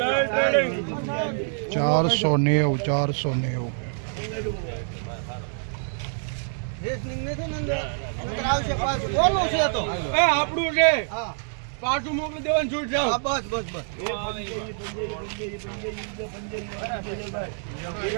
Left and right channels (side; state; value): left; silent; digital silence